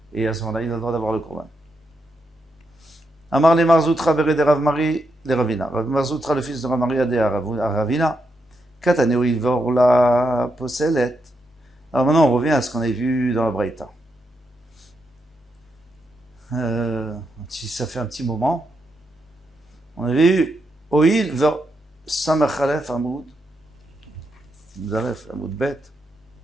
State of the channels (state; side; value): normal; both; correlation 0.83